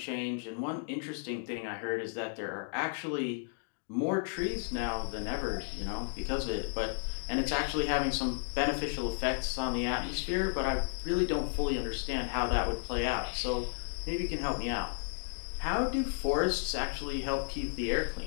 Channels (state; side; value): silent; right; digital silence